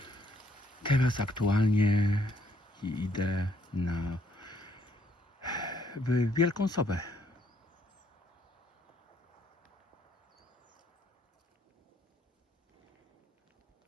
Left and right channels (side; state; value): both; normal; correlation 0.69